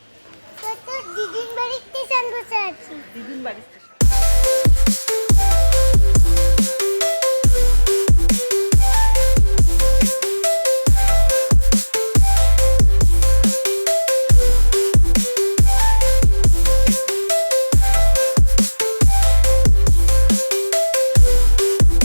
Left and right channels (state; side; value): inverted; both; correlation -1.00